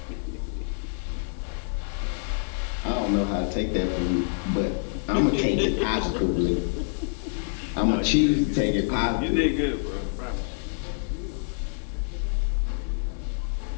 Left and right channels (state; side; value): silent; right; digital silence